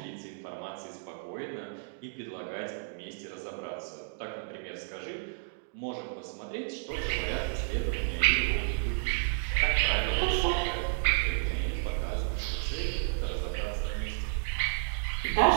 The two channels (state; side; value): silent; left; digital silence